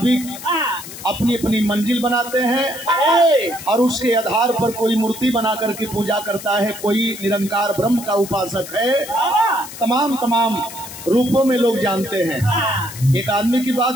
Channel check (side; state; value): left; noise; hiss, 13 dB below the sound